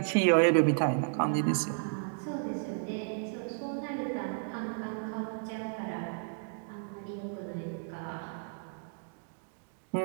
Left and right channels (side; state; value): left; silent; digital silence